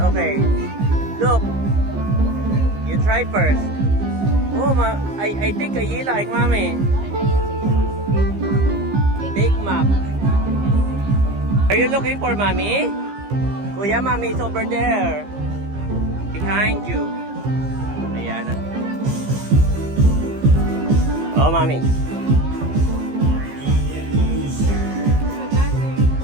Look. You try first. Oh, I think you like, Mami. Big Mac. Are you looking for Mommy? Kuya, Mommy is over there. Behind you. Ayan. Oh, Mommy.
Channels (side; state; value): left; late; 15 ms